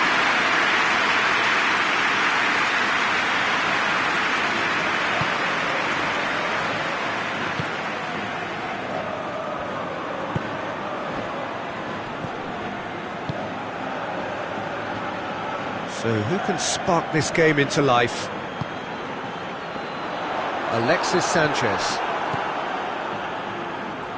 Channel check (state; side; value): identical; both; correlation 1.00